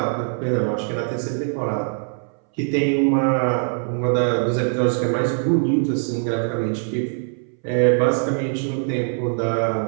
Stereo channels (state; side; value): silent; left; 62 dB below the other